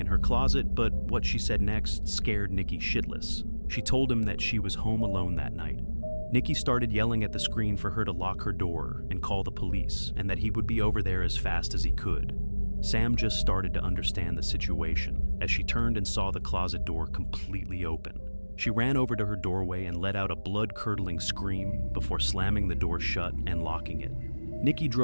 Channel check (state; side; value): inverted; both; correlation -1.00